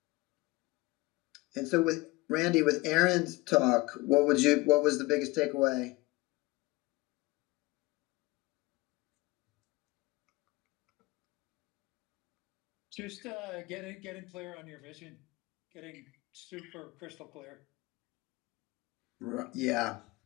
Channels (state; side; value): quieter; right; 22.1 dB